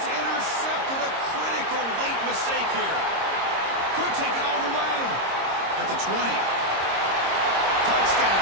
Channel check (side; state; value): left; late; 26 ms